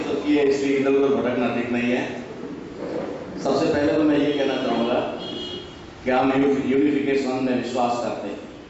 की है, इसलिए इधर उधर भटकना ठीक नहीं है। सबसे पहले तो मैं ये कहना चाहूंगा कि हम यूनिफिकेशन में विश्वास करते हैं,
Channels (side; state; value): both; identical; correlation 1.00